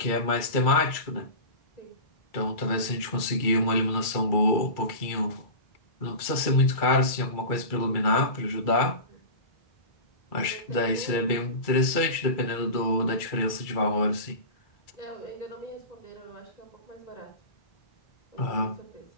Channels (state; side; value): late; right; 2.3 ms